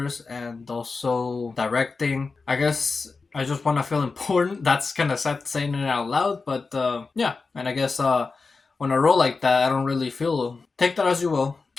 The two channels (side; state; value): right; quieter; 4.3 dB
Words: and also directing. I guess I just want to feel important. That's kind of sad saying it out loud, but yeah. And I guess on a role like that, I don't really feel. Take that as you will.